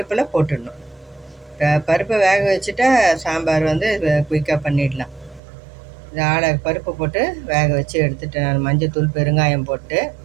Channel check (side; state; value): left; drops out; at 5.4 s